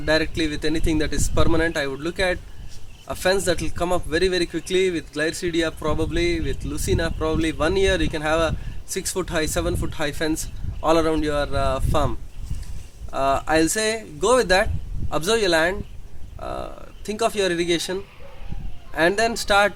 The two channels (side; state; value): both; identical; correlation 1.00